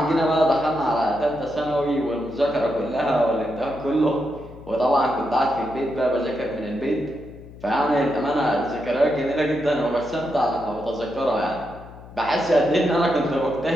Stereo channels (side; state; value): left; noise; hum, 18 dB below the sound